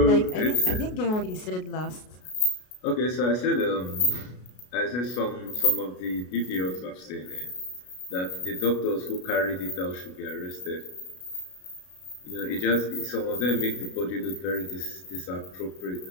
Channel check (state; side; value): late; right; 33 ms